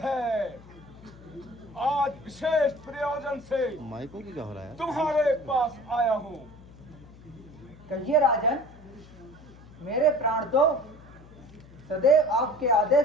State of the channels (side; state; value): left; noise; hum, 21 dB below the sound